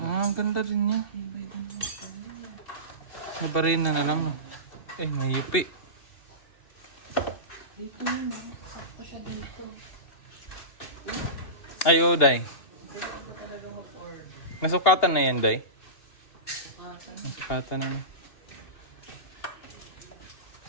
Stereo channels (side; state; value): right; late; 2.9 ms